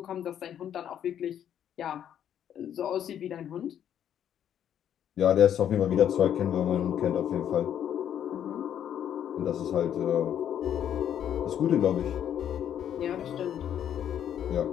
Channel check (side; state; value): right; quieter; 9.8 dB